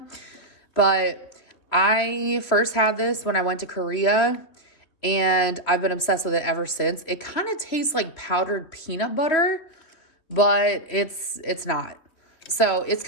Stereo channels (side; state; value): right; late; 3.2 ms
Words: But I first had this when I went to Korea, and I've been obsessed with it ever since. It kind of tastes like powdered peanut butter, but it's not. So it's